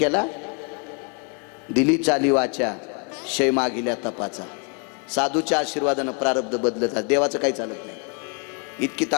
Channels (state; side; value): quieter; right; 35.1 dB